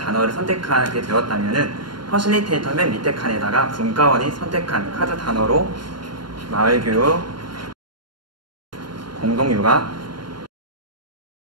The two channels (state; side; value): late; left; 0.72 ms